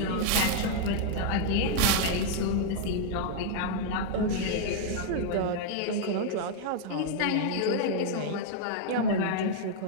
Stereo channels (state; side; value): different; both; correlation 0.00